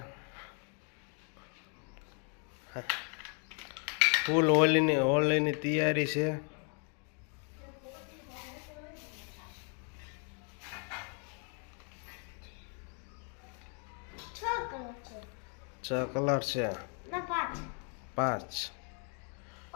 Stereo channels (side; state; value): right; quieter; 39.9 dB